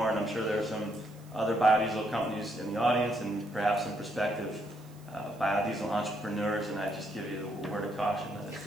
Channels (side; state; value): right; noise; hiss, 27 dB below the sound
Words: And I'm sure there are some other biodiesel companies in the audience and perhaps some prospective biodiesel entrepreneurs, and I just give you a word of caution that